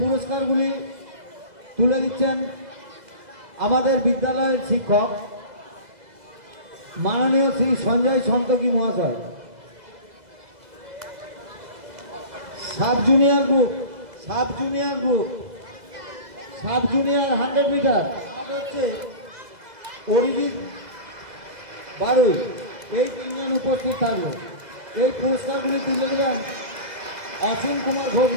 তুলে দিচ্ছেন আমাদের বিদ্যালয়ের শিক্ষক মাননীয় শ্রী সঞ্জয় সন্তোষী মহাশয়। সাব জুনিয়র গ্রুপ 100 মিটার হচ্ছে অরিজিৎ বারুই। এই তিনজন উপস্থিত থাকবে। এই পুরস্কারগুলি তুলে দেবেন অসীম কুমার ঘোষ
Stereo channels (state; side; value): late; left; 2.0 ms